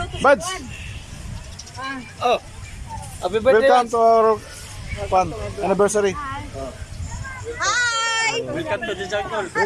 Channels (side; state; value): both; identical; correlation 1.00